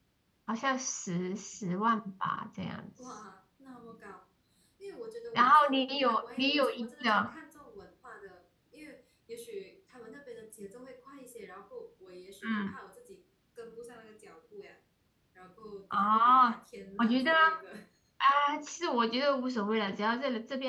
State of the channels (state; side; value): identical; both; correlation 1.00